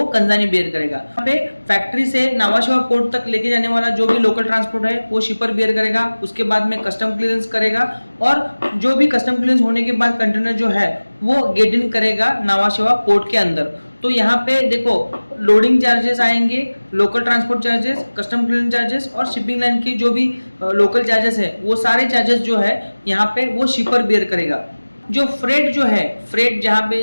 कंजानी बियर करेगा। यहाँ पे फैक्ट्री से नावाशिवा पोर्ट तक लेके जाने वाला जो भी लोकल ट्रांसपोर्ट है वो शिपर बियर करेगा। उसके बाद में कस्टम क्लियरेंस करेगा और जो भी कस्टम क्लियरेंस होने के बाद कंटेनर जो है वो गेट इन करेगा नावाशिवा पोर्ट के अंदर। तो यहाँ पे देखो, लोडिंग चार्जेस आएंगे, local transport charges, custom clearance charges और शिपिंग लाइन की जो भी लोकल चार्जेस है वो सारे चार्जेस जो है यहाँ पे वो शिपर बियर करेगा। जो फ्रेट जो है, फ्रेट जहाँ पे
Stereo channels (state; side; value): inverted; both; correlation -1.00